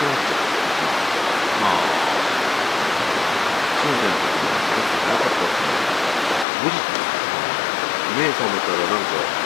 なっちゃう。まあ、そうじゃなくて、なかったっすね。5時目覚めたらなんか、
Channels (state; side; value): drops out; right; at 6.5 s